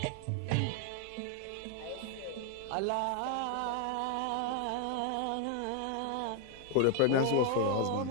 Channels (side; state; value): both; different; correlation 0.00